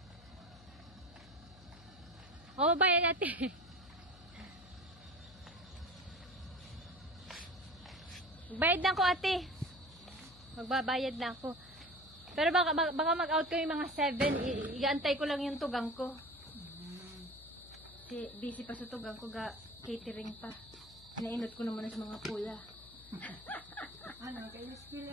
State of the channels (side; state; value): left; noise; hum, 21 dB below the sound